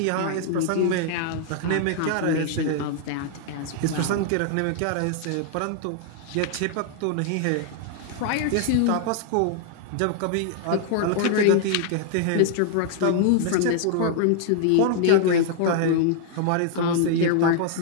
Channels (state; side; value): different; both; correlation 0.00